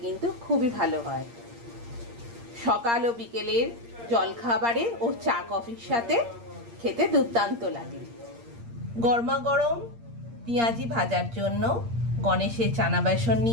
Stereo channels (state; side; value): late; left; 8.6 ms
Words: কিন্তু খুবই ভালো হয়। সকাল ও বিকেলের জলখাবারে ও চা কফির সাথে খেতে দুর্দান্ত লাগে। গরমাগরম পেঁয়াজি ভাজার জন্য গণেশের চানা বেসন